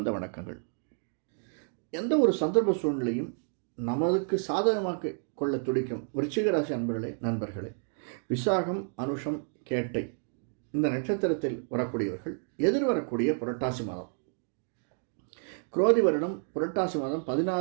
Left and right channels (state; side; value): silent; left; 58 dB below the other